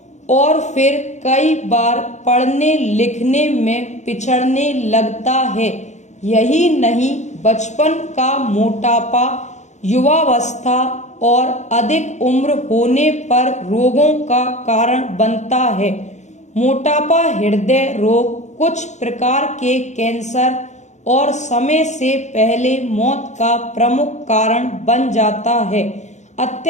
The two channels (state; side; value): late; right; 0.34 ms